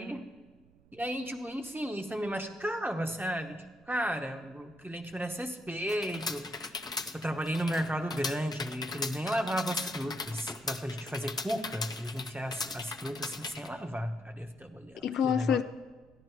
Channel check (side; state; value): right; noise; rumble, 27 dB below the sound